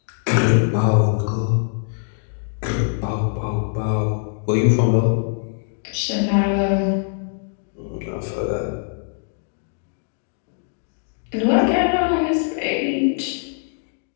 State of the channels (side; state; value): right; silent; digital silence